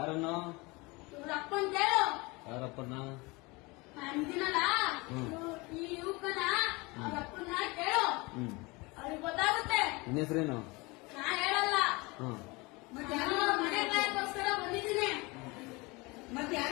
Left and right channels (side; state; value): right; quieter; 25.1 dB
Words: ಇವ್ರ ಅಪ್ಪನ್ ಕೇಳು. ಯಾರಪ್ಪನ? ಅಂದಿನಲ್ಲ ಈ ಯುವಕನ ಅವ್ರ ಅಪ್ಪನ ಕೇಳು. ಅವ್ರಿಗೆ ಗೊತ್ತಾಗುತ್ತೆ. ನಿನ್ನ ಹೆಸರೇನು? ನಾ ಹೇಳಲ್ಲ. ಹ್ಮ್. ನಾನು ಮನೆ ಕಾಯಕ್ಕೋಸ್ಕರ ಬಂದಿದ್ದೀನಿ. ಮತ್ತೆ